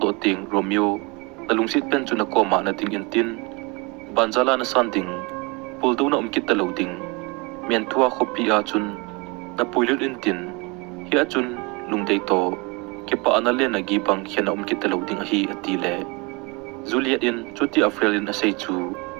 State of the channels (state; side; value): quieter; left; 27.5 dB